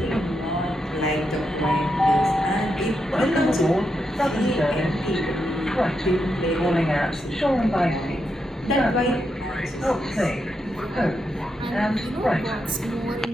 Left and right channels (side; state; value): both; normal; correlation 0.84